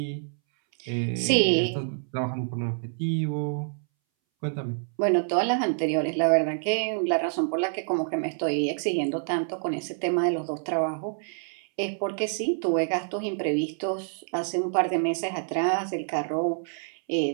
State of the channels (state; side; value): silent; left; 60 dB below the other